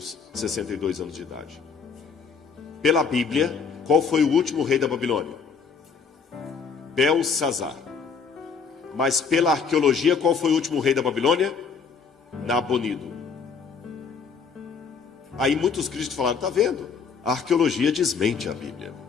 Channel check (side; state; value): right; quieter; 5.7 dB